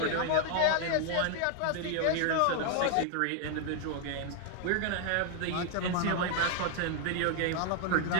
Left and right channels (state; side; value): different; both; correlation 0.00